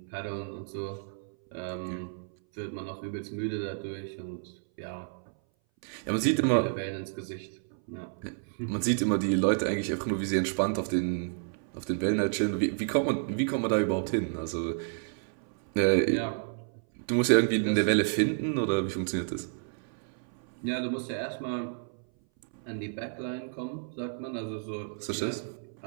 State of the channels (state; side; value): silent; left; 57 dB below the other